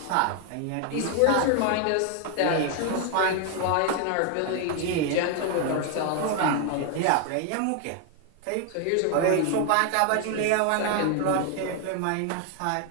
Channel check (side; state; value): both; different; correlation 0.00